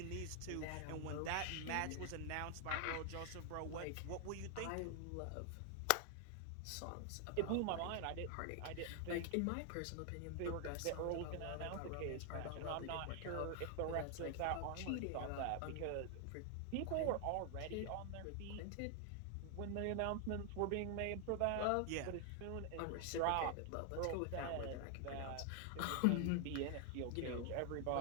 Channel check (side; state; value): both; different; correlation 0.00